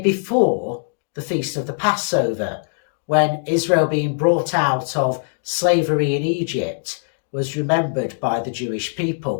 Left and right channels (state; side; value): silent; right; digital silence